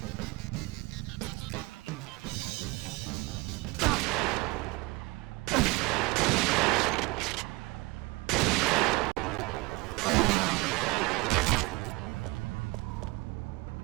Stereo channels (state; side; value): quieter; left; 24.0 dB